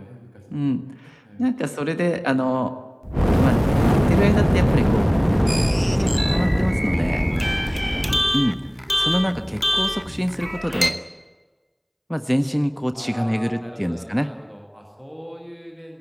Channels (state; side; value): identical; both; correlation 1.00